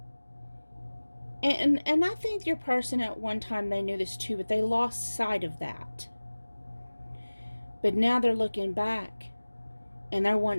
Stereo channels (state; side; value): inverted; both; correlation -1.00